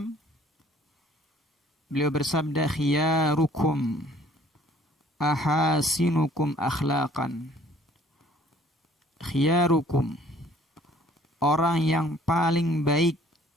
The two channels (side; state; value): both; normal; correlation 0.57